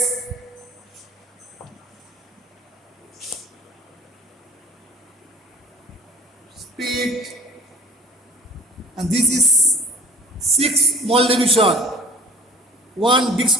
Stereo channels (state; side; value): normal; both; correlation 0.45